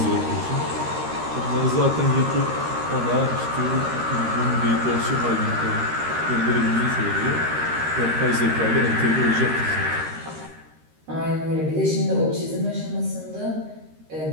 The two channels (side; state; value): left; late; 13 ms